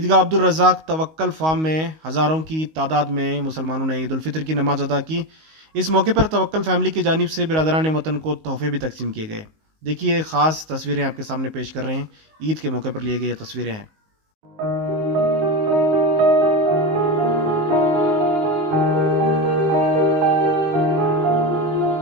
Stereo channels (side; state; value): left; late; 19 ms